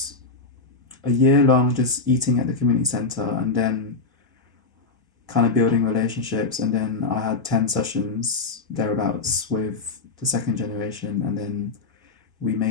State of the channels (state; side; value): quieter; right; 3.9 dB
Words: a year long just eating at the community centre and then kind of building relationships. And then I had 10 sessions thereabouts with the second generation. And then we